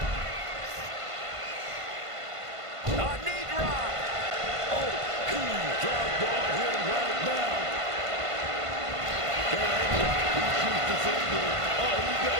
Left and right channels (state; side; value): late; left; 1.5 ms